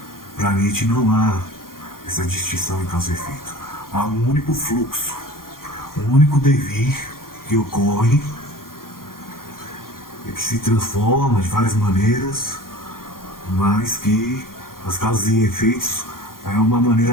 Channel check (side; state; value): right; late; 0.91 ms